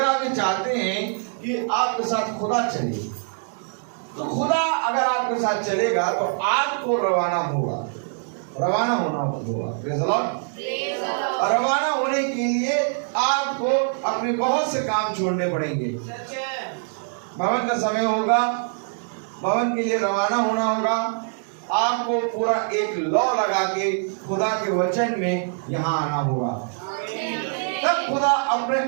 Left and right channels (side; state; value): left; silent; 63 dB below the other